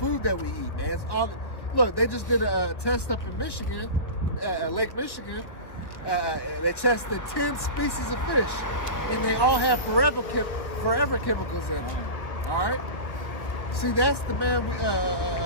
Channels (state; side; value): late; right; 1.5 ms